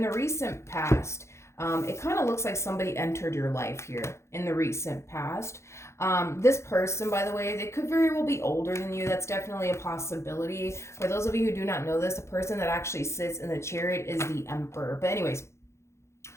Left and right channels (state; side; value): late; right; 0.13 ms